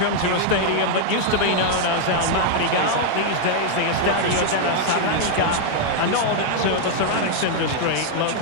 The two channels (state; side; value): different; both; correlation 0.00